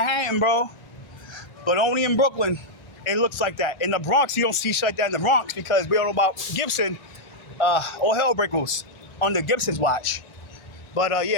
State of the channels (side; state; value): right; late; 1.4 ms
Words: bro. But only in Brooklyn, it looks like that. In the Bronx, you don't see shit like that in the Bronx because we don't know about Gibson. All hell break loose under Gibson's watch. But